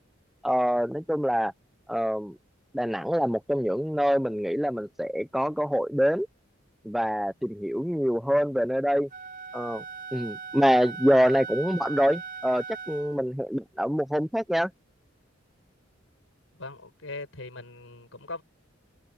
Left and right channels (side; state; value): both; normal; correlation 0.97